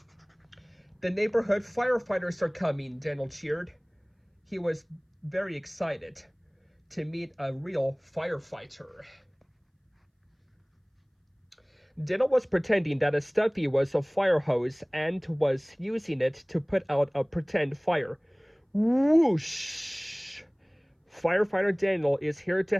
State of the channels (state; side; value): identical; both; correlation 1.00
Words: The neighborhood firefighters are coming, Daniel cheered. He was very excited to meet a real firefighter. Daniel was pretending that a stuffy was a fire hose and was using it to put out a pretend fire. Whoosh! Firefighter Daniel is here to